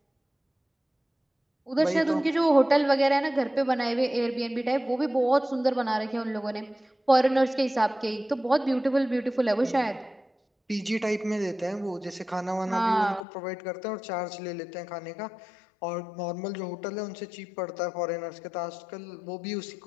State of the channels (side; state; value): right; drops out; at 13.2 s